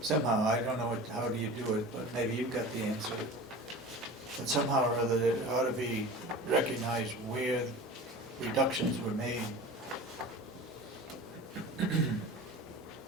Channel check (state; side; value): normal; both; correlation 0.36